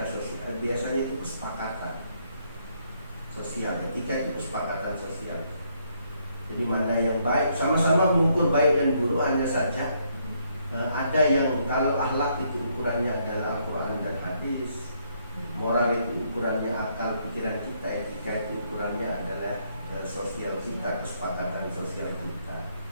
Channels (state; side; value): inverted; both; correlation -0.72